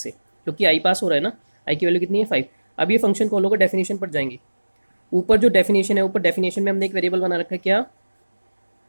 क्योंकि आई पास हो रहा है ना, आई की वैल्यू कितनी है 5. अब ये फंक्शन कॉल होगा, डेफिनेशन पर जाएंगे. ऊपर जो डेफिनेशन है, ऊपर डेफिनेशन में हमने एक वेरिएबल बना रखा है, क्या,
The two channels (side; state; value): both; inverted; correlation -1.00